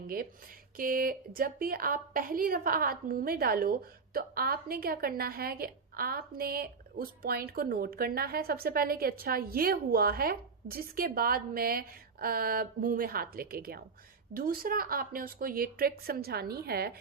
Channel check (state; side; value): quieter; left; 4.9 dB